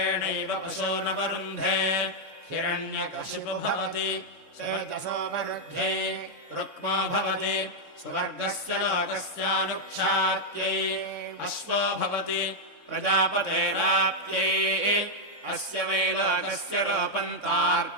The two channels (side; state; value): right; late; 3.6 ms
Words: पशूनवरुन्धे हिरण्यकशिपु भवति तेजसोपरुध्ये रुक्मो भवति सुवर्गस्य लोकस्यानुक्षात्यै अश्वो भवति प्रजापतेराप्यै अस्य वै लोकस्य